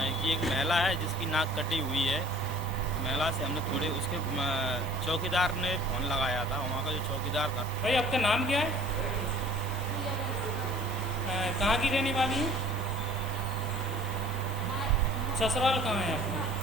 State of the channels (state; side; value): normal; both; correlation 0.50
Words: कि एक महिला है जिसकी नाक कटी हुई है। महिला से हमने थोड़े उसके चौकीदार ने फ़ोन लगाया था, वहाँ का जो चौकीदार था। भाई आपका नाम क्या है? कहाँ की रहने वाली है? ससुराल कहाँ है आपका?